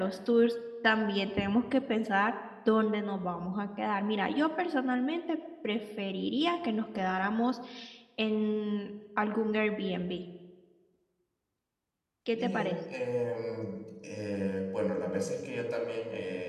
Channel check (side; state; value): both; identical; correlation 1.00